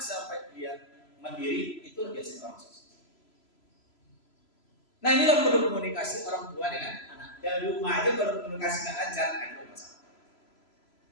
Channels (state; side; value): late; right; 3.0 ms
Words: dia mandiri, itu biasanya orang sukses. Nah, inilah perlu komunikasi orang tua dengan anak. Dan rumah aja kalau komunikasi nggak lancar, itu masalah.